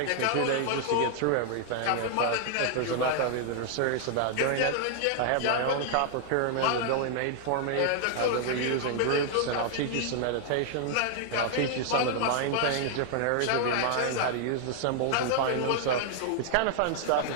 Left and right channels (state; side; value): different; both; correlation -0.01